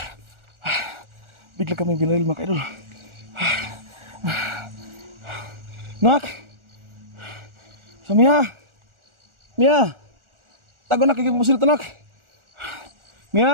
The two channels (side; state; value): left; late; 1.4 ms